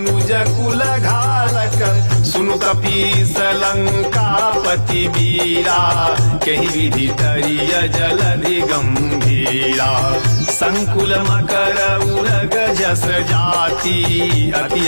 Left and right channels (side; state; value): both; inverted; correlation -1.00